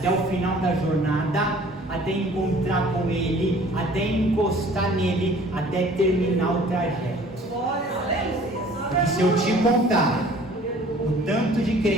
o final da jornada, até encontrar com Ele, até encostar nele, até terminar o trajeto. Porque se eu te contar o tanto de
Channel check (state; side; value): normal; both; correlation 0.51